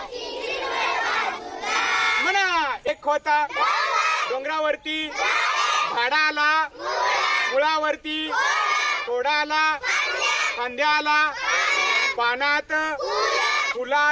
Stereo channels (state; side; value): identical; both; correlation 1.00